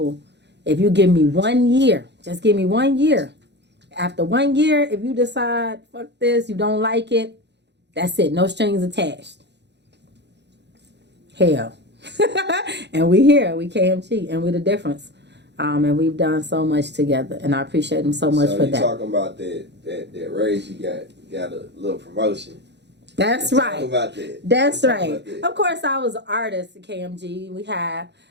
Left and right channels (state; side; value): late; left; 0.50 ms